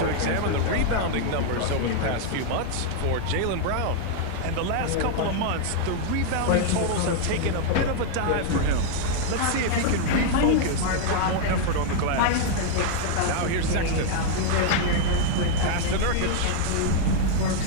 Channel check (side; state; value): both; different; correlation 0.00